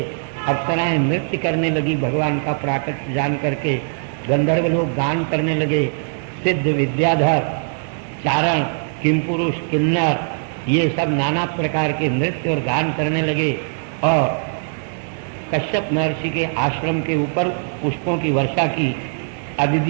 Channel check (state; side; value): silent; left; digital silence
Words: अप्सराएं नृत्य करने लगी भगवान का प्राकट्य जान करके, गंधर्व लोग गान करने लगे, सिद्ध, विद्याधर, चारण, किमपुरुष, किन्नर, ये सब नाना प्रकार के नृत्य और गान करने लगे। और कश्यप महर्षि के आश्रम के ऊपर पुष्पों की वर्षा की।